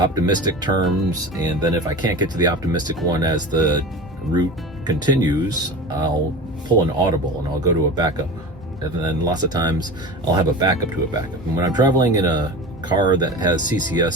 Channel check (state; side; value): normal; both; correlation 0.32